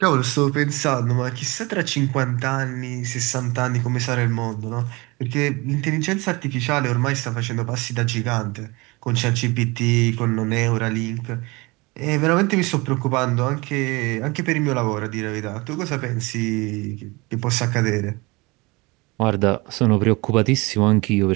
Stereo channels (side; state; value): left; quieter; 24.6 dB